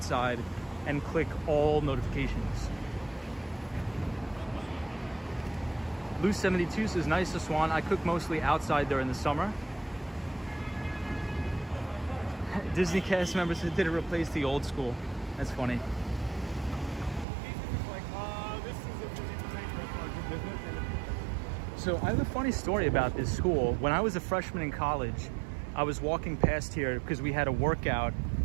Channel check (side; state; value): left; drops out; at 17.2 s